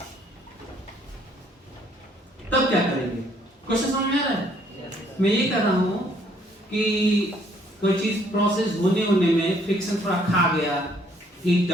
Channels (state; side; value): normal; both; correlation 0.64